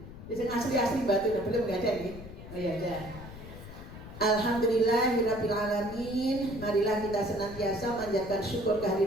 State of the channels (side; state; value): left; noise; rumble, 13 dB below the sound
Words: Asli batu, belum nggak ada nih? Oh ya ada. Alhamdulillahirabbil alamin. Marilah kita senantiasa manjatkan syukur